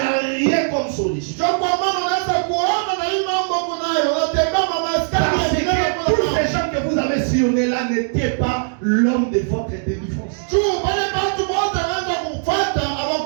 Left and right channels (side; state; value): left; silent; 66 dB below the other